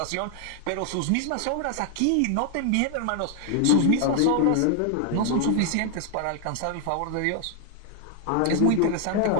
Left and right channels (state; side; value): different; both; correlation 0.00